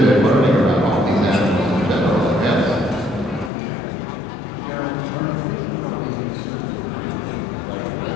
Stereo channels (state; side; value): drops out; right; at 3.5 s